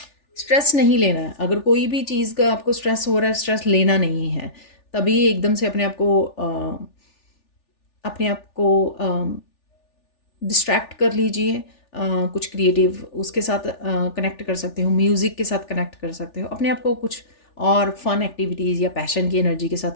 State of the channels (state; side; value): late; right; 3.4 ms